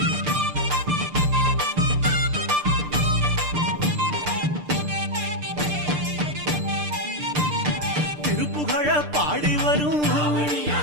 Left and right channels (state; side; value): late; left; 6.7 ms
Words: திருப்புகழ பாடி வரும்